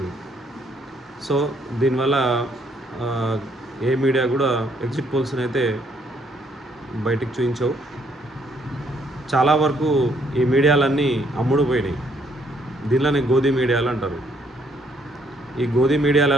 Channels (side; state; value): both; normal; correlation 0.69